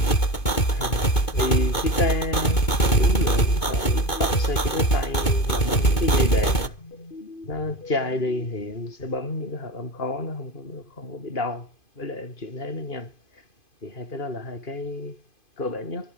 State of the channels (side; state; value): right; late; 2.5 ms